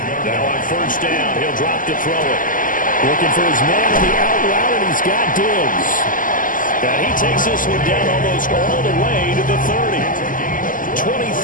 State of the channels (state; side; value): late; right; 0.39 ms